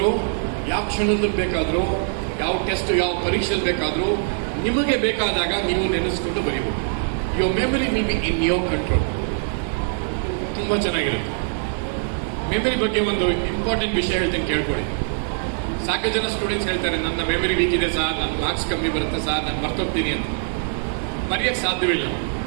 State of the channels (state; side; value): silent; left; digital silence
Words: ಯಾವ ಕ್ಷಣದಲ್ಲಿ ಬೇಕಾದ್ರೂ, ಯಾವ ಟೆಸ್ಟ್, ಯಾವ ಪರೀಕ್ಷೆಯಲ್ಲಿ ಬೇಕಾದ್ರೂ ನಿಮಗೆ ಬೇಕಾದಾಗ ನೀವು ನೆನೆಸ್ಕೊಂಡು ಬರೀಬಹುದು. Your memory will be in your control. ತುಂಬಾ ಚೆನ್ನಾಗಿರುತ್ತೆ. ಮೆಮರಿ ಬಗ್ಗೆ ಒಂದು ಇಂಪಾರ್ಟೆಂಟ್ ವಿಷಯ ಹೇಳ್ತೀನಿ, ಕೇಳ್ಕೊಳ್ಳಿ. ಸಾಕಷ್ಟು ಜನ ಸ್ಟೂಡೆಂಟ್ಸ್ ಹೇಳ್ತಾರೆ, ನನ್ನ ಮೆಮರಿ ವೀಕ್ ಇದೆ ಸರ್, ನನ್ನ ಮಾರ್ಕ್ಸ್ ಕಮ್ಮಿ ಬರುತ್ತೆ ಸರ್, ನಾನು ಮರ್ತೋಗ್ತೀನಿ ಅಂತ. ಮರೆಯಕ್ಕೆ ಸಾಧ್ಯವಿಲ್ಲ.